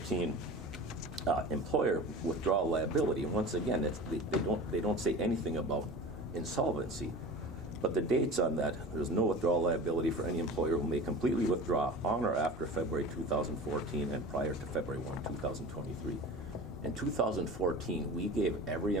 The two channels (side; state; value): both; normal; correlation 0.35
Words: employer withdrawal liability, and once again, they don't say anything about insolvency. But the dates on that, there's no withdrawal liability for any employer who may completely withdraw on or after February 2014 and prior to February 1, 2023. In 2014, we gave every